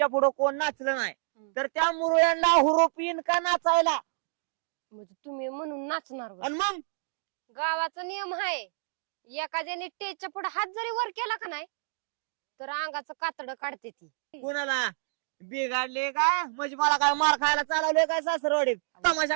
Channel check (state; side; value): silent; left; digital silence